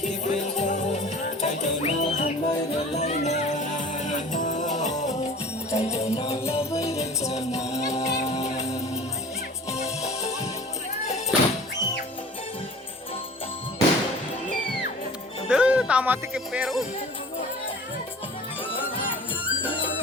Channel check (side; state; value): both; normal; correlation 0.42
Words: Duh, tamat ke Peru.